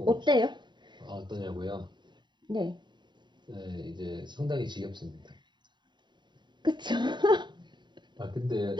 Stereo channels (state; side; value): late; left; 0.22 ms